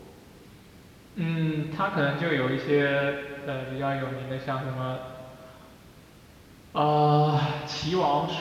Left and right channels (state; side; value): identical; both; correlation 1.00